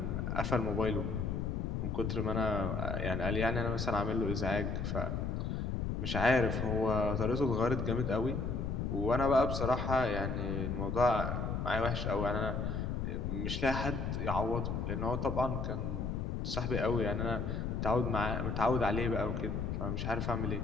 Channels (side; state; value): left; noise; rumble, 1 dB below the sound